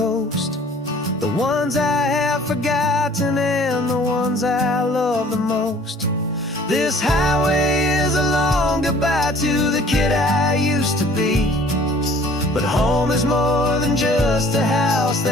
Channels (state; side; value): normal; both; correlation 0.53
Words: the ones I have forgotten and the ones I love the most. This highway is a long goodbye to the kid I used to be. But home is more than just a house